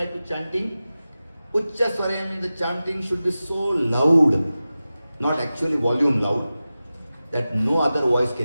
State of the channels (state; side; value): inverted; both; correlation -0.95